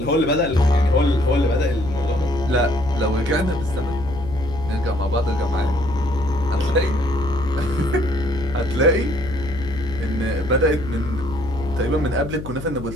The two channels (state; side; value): noise; left; hum, 10 dB below the sound